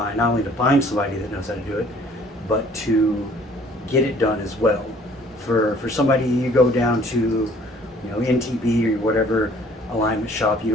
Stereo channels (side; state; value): both; normal; correlation 0.56